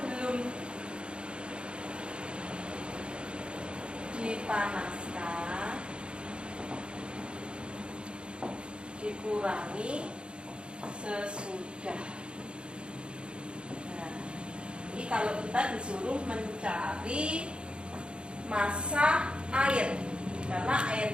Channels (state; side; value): late; left; 0.055 ms